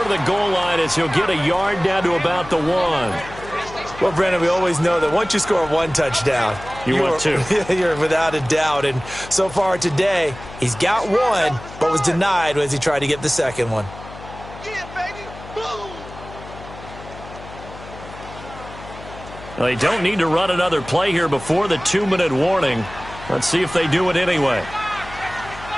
of the goal line as he'll get a yard down to about the 1. Well, Brandon, we always know that once you score 1 touchdown, you want 2. You're without a doubt. And so far today, he's got 1, but was denied as he tried to get the second one. Well, they don't need to run another play here before the 2-minute warning. Let's see if they do it anyway.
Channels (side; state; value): left; noise; hum, 15 dB below the sound